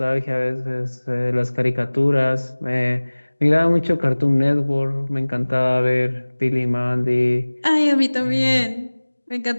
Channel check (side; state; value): both; inverted; correlation -1.00